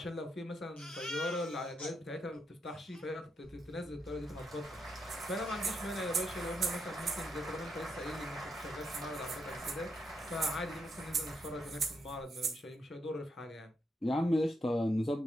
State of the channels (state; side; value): normal; both; correlation 0.81